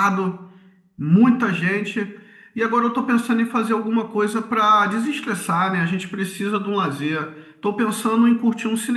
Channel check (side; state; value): both; identical; correlation 1.00